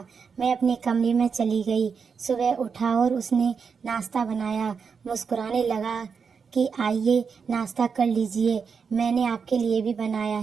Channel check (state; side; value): quieter; left; 5.9 dB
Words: मैं अपने कमरे में चली गई। सुबह उठा और उसने नाश्ता बनाया। मुस्कुराने लगा कि आइए नाश्ता कर लीजिए, मैंने आपके लिए भी बनाया